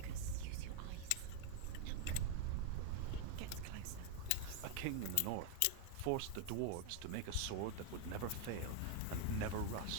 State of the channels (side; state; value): both; different; correlation 0.01